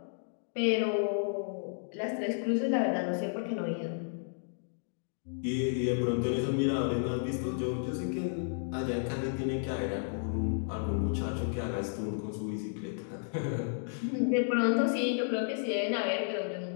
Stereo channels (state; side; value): silent; right; digital silence